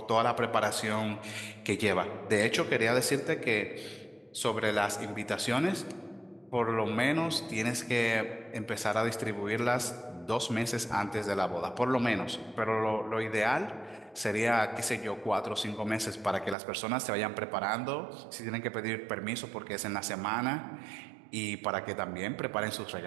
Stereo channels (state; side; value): drops out; left; at 16.6 s